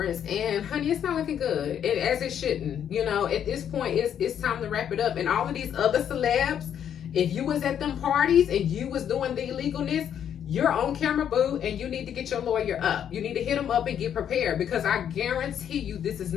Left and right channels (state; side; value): quieter; right; 9.1 dB